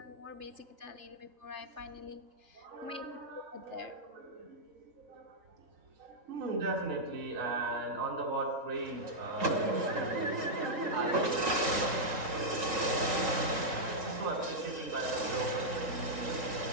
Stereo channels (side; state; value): left; late; 3.8 ms